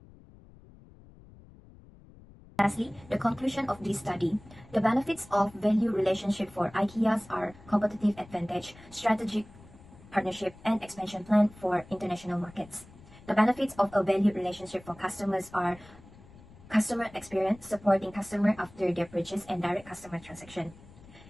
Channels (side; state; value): left; noise; rumble, 22 dB below the sound